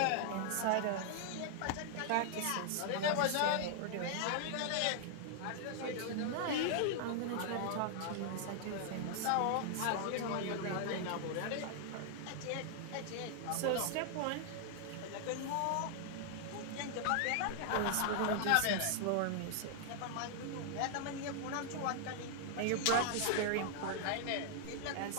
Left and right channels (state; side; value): different; both; correlation 0.00